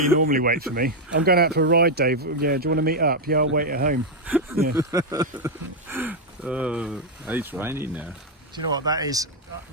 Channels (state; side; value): normal; both; correlation 0.00